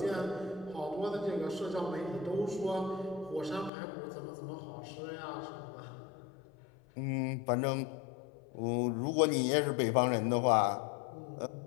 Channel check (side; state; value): right; drops out; at 3.7 s